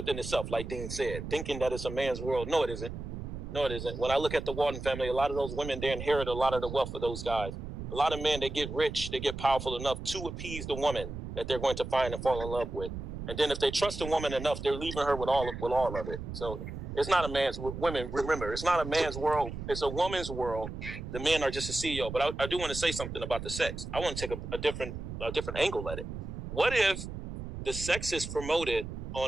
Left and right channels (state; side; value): noise; right; rumble, 8 dB below the sound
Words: itself, like Dean said, thinking that it's a man's world. No, it isn't. No, it isn't. When I look at the Walton family, a lot of those women, they inherit a lot of the wealth of those guys. A lot of men, they get rich, they get powerful enough to appease the woman that they're going to find and fall in love with. And then if they trust a woman enough, they're leaving her with all of it. So it's not a man's, women, remember, it's not a man's world. It's a woman's world. The men are just a CEO. But I do want to say something about the sex. I want to take a different angle at it. What if the sex is promoted